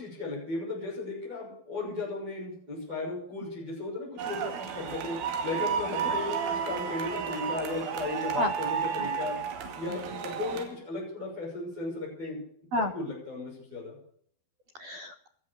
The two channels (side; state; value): left; late; 12 ms